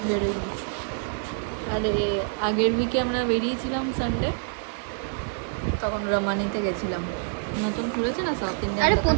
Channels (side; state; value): left; silent; digital silence